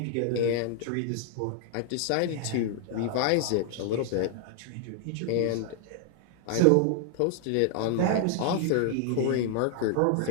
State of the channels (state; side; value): different; both; correlation 0.00